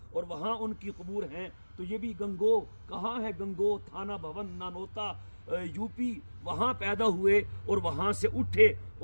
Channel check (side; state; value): both; inverted; correlation -1.00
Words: और वहाँ उनकी कबूर हैं। तो ये भी गंगो कहाँ है? गंगो थाना भवन नानोता यूपी, वहाँ पैदा हुए और वहाँ से उठे